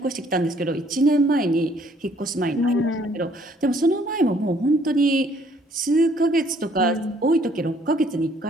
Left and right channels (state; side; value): normal; both; correlation 0.63